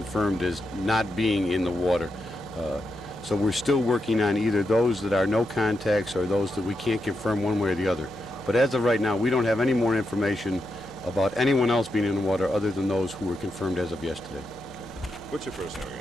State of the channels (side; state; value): both; normal; correlation 0.85